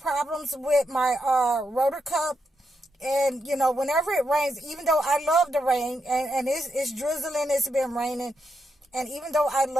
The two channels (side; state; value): both; normal; correlation 0.83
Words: with my rotor cup. And, whenever it rains, even though I love the rain, and it's drizzling, it's been raining. And even though I